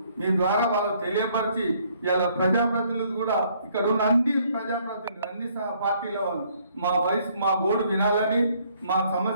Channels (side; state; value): both; inverted; correlation -0.66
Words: మీ ద్వారా వాళ్ళకు తెలియపరిచి ఇలా ప్రజాప్రతినిధులు కూడా ఇక్కడ ఉన్న అన్ని ప్రజాప్రతినిధులు, అన్ని పార్టీల వాళ్ళు మా గోడు వినాలని, మా